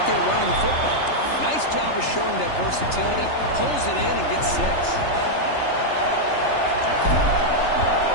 there running the football. Nice job of showing that versatility. Pulls it in and gets 6.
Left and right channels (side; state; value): right; late; 3.3 ms